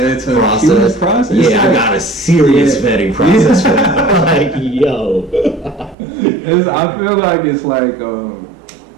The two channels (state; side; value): drops out; left; at 6.0 s